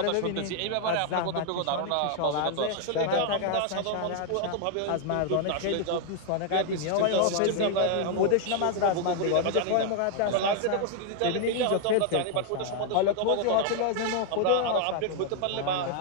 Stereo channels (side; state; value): both; different; correlation 0.00